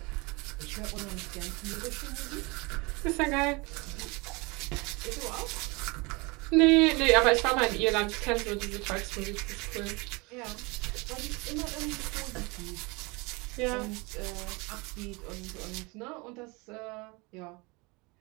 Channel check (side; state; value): left; quieter; 26.6 dB